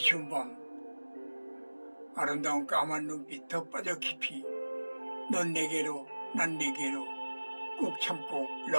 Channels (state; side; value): inverted; both; correlation -1.00